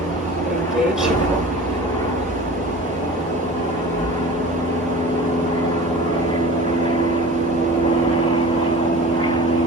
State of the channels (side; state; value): both; normal; correlation 0.38